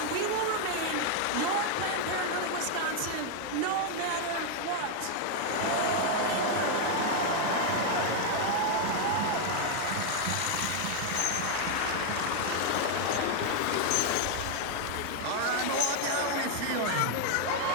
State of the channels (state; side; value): different; both; correlation 0.00